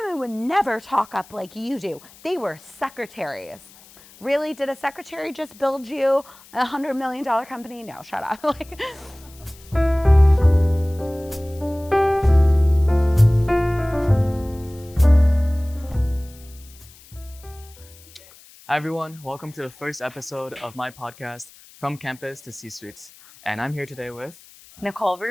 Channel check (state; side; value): noise; left; hiss, 23 dB below the sound